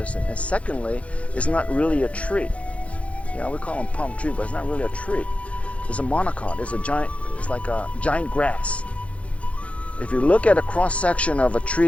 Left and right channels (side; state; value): right; late; 0.063 ms